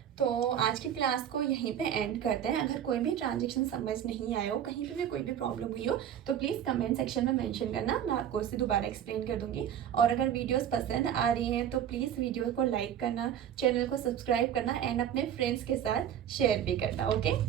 तो आज की क्लास को यहीं पे एंड करते हैं। अगर कोई भी ट्रांजेक्शन समझ नहीं आया हो, कहीं पे भी कोई भी प्रॉब्लम हुई हो, तो प्लीज़ कमेंट सेक्शन में मेंशन करना, मैं आपको उसे दोबारा एक्सप्लेन कर दूंगी। और अगर वीडियोस पसंद आ रही हैं तो प्लीज़ वीडियो को लाइक करना, चैनल को सब्सक्राइब करना, एंड अपने फ्रेंड्स के साथ शेयर भी करना। Okay,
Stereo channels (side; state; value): left; quieter; 9.8 dB